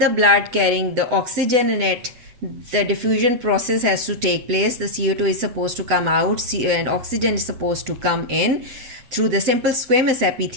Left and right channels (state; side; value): late; left; 7.9 ms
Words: blood carrying the oxygen in it, the diffusion process has to take place. The CO2 is supposed to come out and oxygen is supposed to come in through the simple squamous